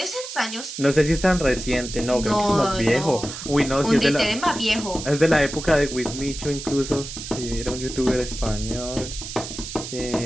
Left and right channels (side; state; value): right; noise; hiss, 9 dB below the sound